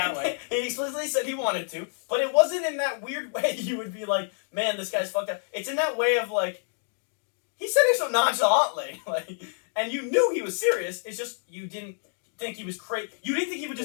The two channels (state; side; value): silent; right; digital silence